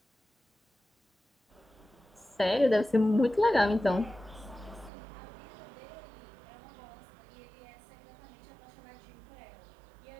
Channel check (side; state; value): left; drops out; at 4.9 s